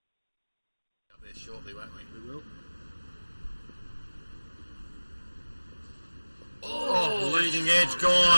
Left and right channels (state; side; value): inverted; both; correlation -1.00